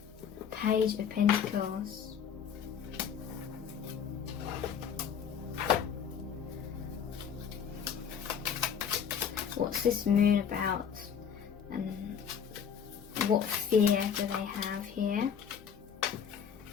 Page of Pentacles. What's this moon about? And what fear do they have here?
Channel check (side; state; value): right; quieter; 7.7 dB